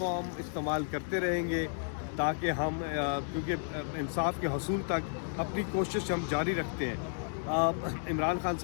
استعمال کرتے رہیں گے، تاکہ ہم کیونکہ انصاف کے حصول تک اپنی کوشش ہم جاری رکھتے ہیں۔ عمران خان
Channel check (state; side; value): silent; right; digital silence